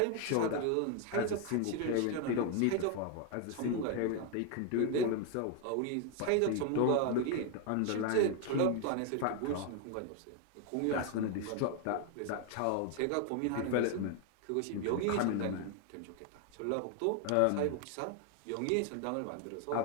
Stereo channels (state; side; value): different; both; correlation 0.01